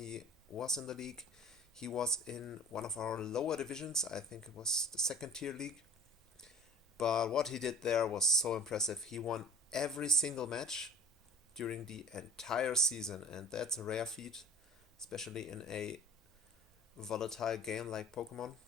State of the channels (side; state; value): both; normal; correlation 0.43